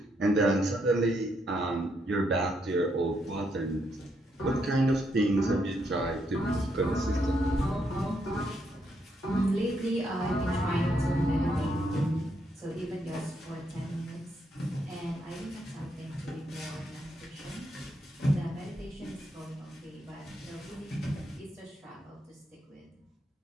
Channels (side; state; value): both; normal; correlation 0.77